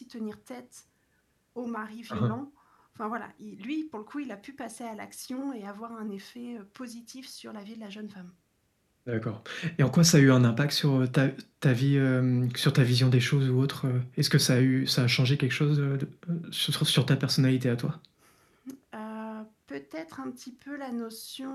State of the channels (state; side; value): identical; both; correlation 1.00